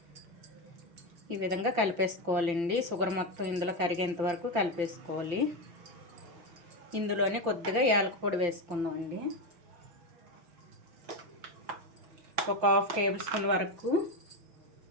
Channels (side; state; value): left; late; 5.8 ms